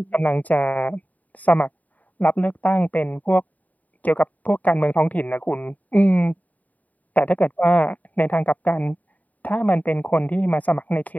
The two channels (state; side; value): late; right; 0.074 ms